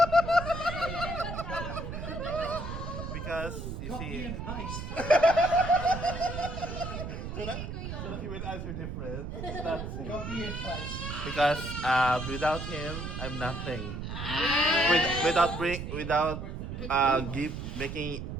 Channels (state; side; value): noise; right; rumble, 6 dB below the sound